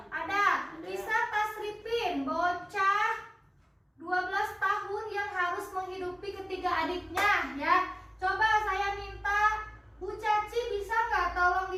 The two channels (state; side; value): identical; both; correlation 1.00